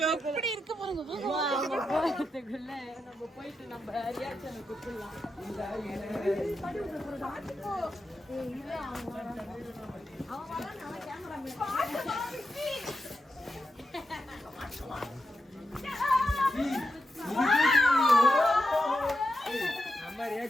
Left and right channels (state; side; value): normal; both; correlation 0.87